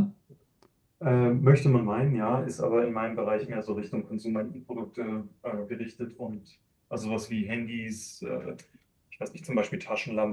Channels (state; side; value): identical; both; correlation 1.00